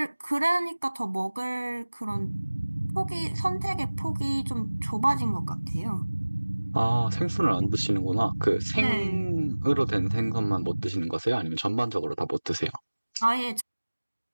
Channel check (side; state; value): both; inverted; correlation -1.00